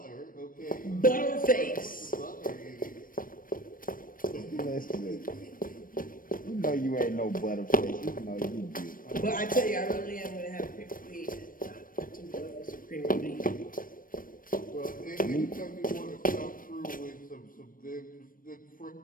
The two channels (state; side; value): late; right; 0.40 ms